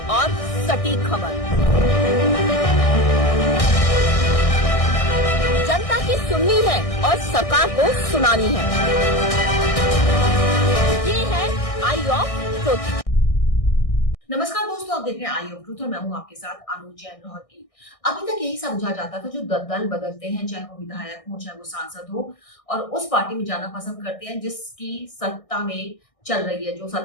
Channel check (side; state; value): right; late; 1.6 ms